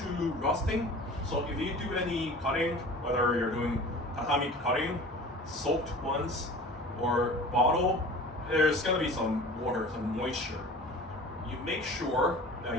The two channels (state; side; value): normal; both; correlation 0.41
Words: rusting. So if you do any cutting, whether you're doing tatami cutting, soaked ones, or bottle, there's gonna be some water, some moisture. You make sure